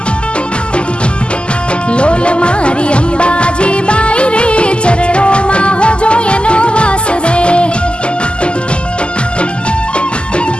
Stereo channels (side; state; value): right; late; 0.051 ms